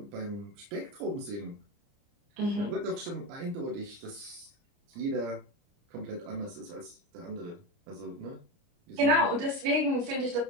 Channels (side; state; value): left; late; 29 ms